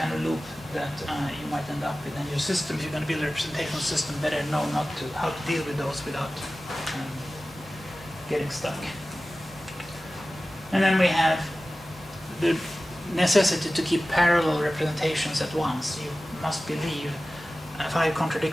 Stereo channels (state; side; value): normal; both; correlation 0.96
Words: of loop that you might end up with. And your system, if you're going to build a representational system, better know how to deal with those without getting stuck. And then we have the necessity to keep parallel representations at once. You must believe 5